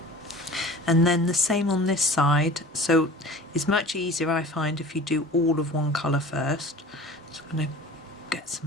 And then the same on this side, so it's much easier I find if you do all of one colour first. So I'm going to get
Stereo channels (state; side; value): normal; both; correlation 0.41